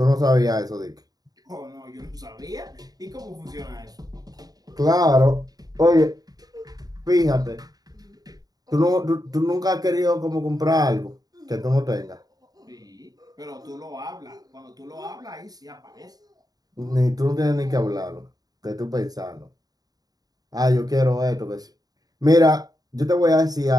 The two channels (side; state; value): left; late; 0.18 ms